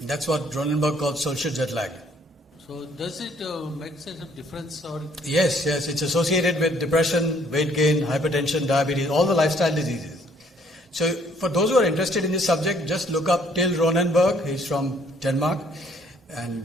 That's what Ronenberg calls social jet lag. So does it make sense of difference or? Yes, it's associated with depression, weight gain, hypertension, diabetes, all the lifestyle diseases. So for those who are interested in this subject, just look up Till Ronenberg. He's from Denmark. And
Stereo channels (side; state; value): both; normal; correlation 0.63